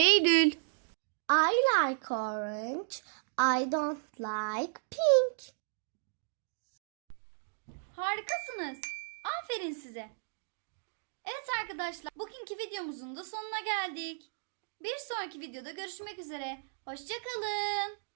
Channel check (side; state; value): left; silent; digital silence